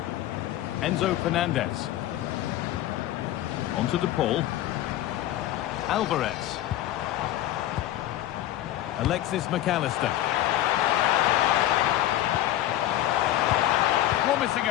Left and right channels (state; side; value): quieter; right; 13.7 dB